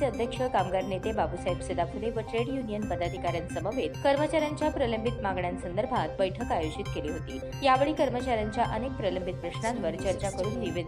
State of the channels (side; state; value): both; identical; correlation 1.00